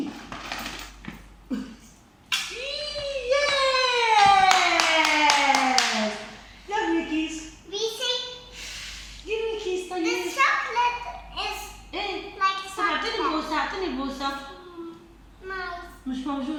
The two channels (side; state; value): both; identical; correlation 1.00